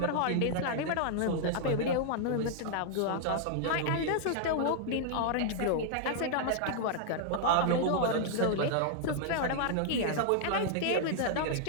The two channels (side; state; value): both; different; correlation -0.01